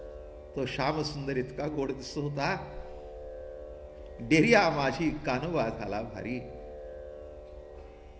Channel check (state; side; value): identical; both; correlation 1.00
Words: तो श्यामसुंदर इतका गोड दिसत होता. डेरिया माझी कानोबा झाला भारी.